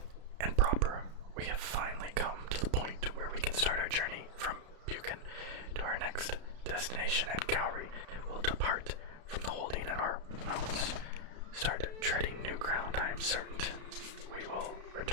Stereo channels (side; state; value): left; late; 32 ms